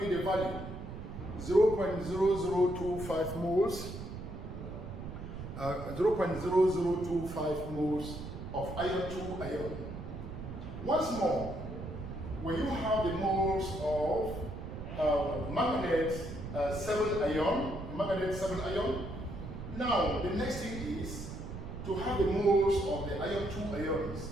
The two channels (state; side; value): noise; right; rumble, 9 dB below the sound